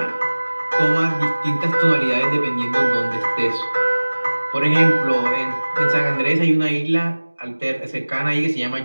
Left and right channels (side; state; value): both; inverted; correlation -1.00